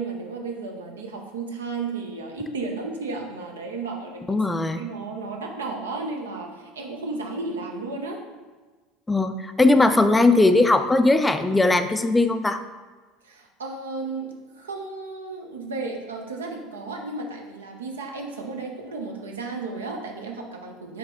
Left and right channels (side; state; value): both; normal; correlation 0.73